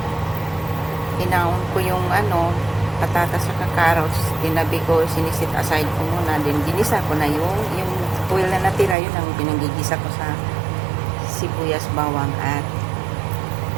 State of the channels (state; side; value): drops out; left; at 9.0 s